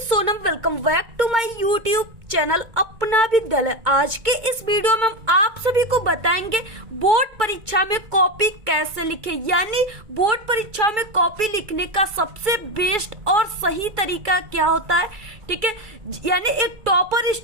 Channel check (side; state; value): left; late; 2.2 ms